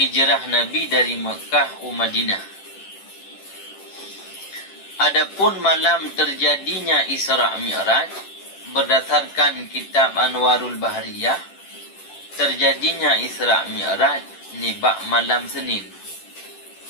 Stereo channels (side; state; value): right; late; 10 ms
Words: Nabi dari Mekah ke Madinah. Adapun malam terjadinya Isra' Mi'raj, berdasarkan kitab Anwarul Bahriyah, terjadinya Isra' Mi'raj nibak malam Senin.